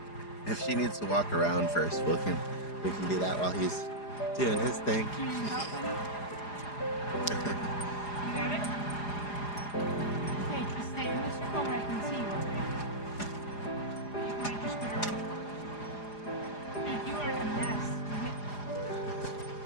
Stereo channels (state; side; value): late; right; 4.9 ms